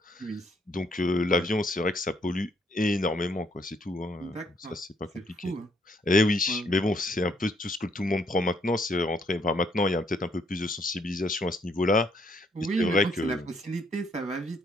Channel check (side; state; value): both; normal; correlation 0.70